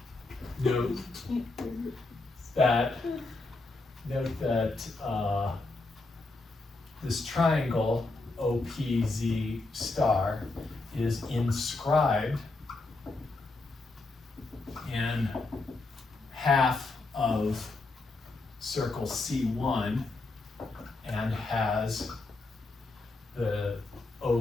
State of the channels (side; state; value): right; quieter; 3.3 dB